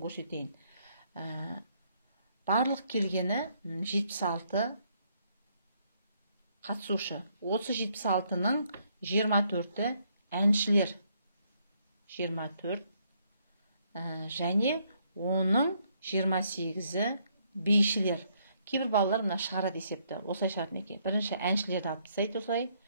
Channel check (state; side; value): inverted; both; correlation -0.71